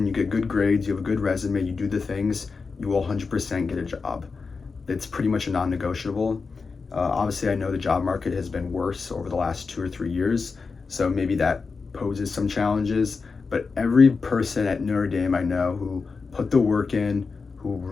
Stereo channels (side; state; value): right; quieter; 4.7 dB